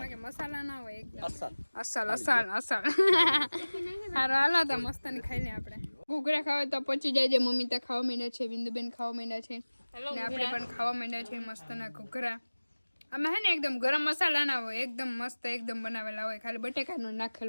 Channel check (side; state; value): both; inverted; correlation -1.00